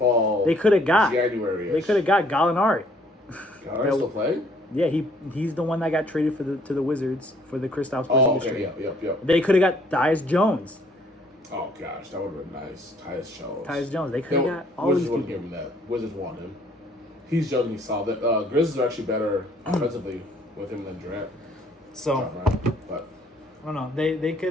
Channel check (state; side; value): normal; both; correlation 0.62